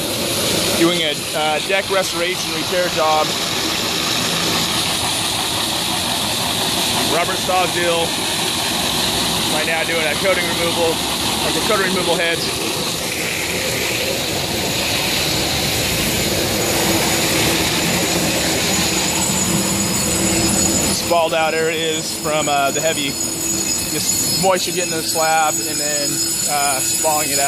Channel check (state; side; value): identical; both; correlation 1.00